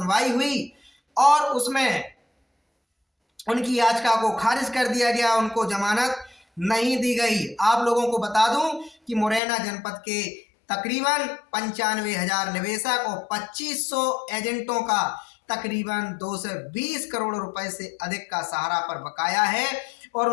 हुई और उसमें उनकी याचिका को खारिज कर दिया गया, उनको जमानत नहीं दी गई। आप लोगों को बता दूं कि मुरैना जनपद के तकरीबन 95,000 निवेशक और 2500 एजेंटों का तकरीबन 220 करोड़ रुपए से अधिक का सहारा पर बकाया है और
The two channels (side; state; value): right; drops out; at 9.4 s